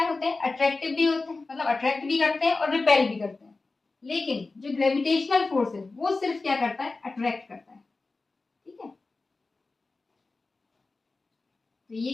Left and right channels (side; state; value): right; quieter; 3.6 dB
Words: होते हैं, अट्रैक्टिव भी होते हैं, मतलब अट्रैक्ट भी करते हैं और रिपेल भी करते हैं। लेकिन जो ग्रेविटेशनल फोर्स है वो सिर्फ क्या करता है, अट्रैक्ट करता है। ठीक है, तो ये